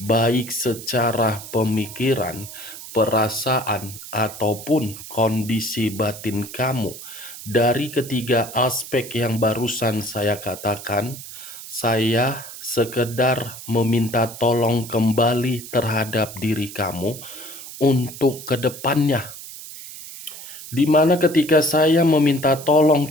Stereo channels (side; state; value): right; noise; hiss, 13 dB below the sound